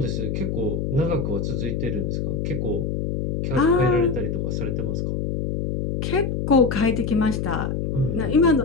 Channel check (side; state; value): left; noise; hum, 1 dB below the sound